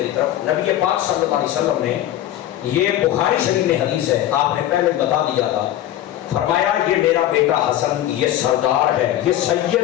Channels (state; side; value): quieter; right; 12.9 dB